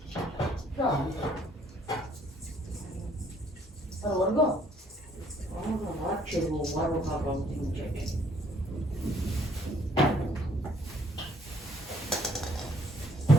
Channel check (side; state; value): both; normal; correlation 0.63